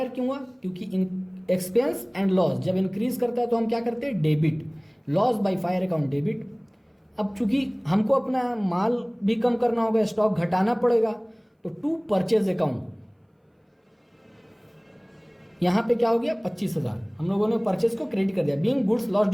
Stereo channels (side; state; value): both; identical; correlation 1.00